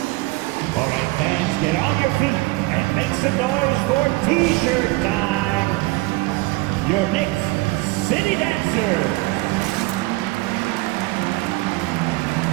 All right, fans, get on your feet and make some noise for T-shirt time. Your Knicks City Dancers.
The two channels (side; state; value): left; quieter; 22.1 dB